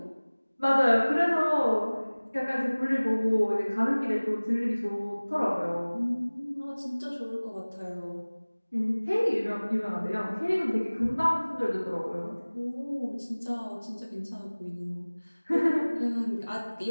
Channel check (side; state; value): both; inverted; correlation -1.00